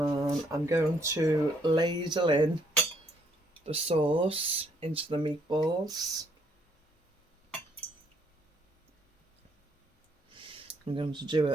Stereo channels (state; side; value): normal; both; correlation 0.69